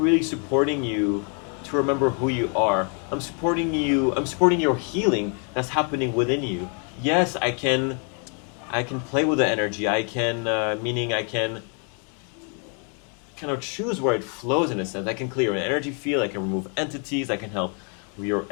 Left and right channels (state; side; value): quieter; right; 39.2 dB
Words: supporting you to remember who you are. I'm supporting you. I'm supporting your healing that's happening within you. Yes, I can play with the energy. Meaning I can kind of choose where it flows in a sense. I can clear an energy field. I can remove entities. I can help your